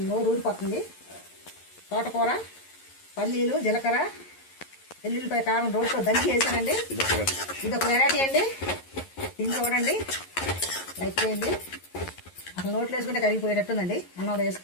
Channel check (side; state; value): right; late; 11 ms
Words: నోరు ఊరిపోతుంది. తోటకూర, పల్లీలు, జీలకర్ర, వెల్లుల్లిపాయ, కారం రోడ్లో దంచి వేసానండి. ఇది ఒక వెరైటీ అండి. ఇది చూడండి అయిపోయింది. అసలు నోట్లో వేసుకుంటే కరిగిపోయేటట్టుందండి. అన్నం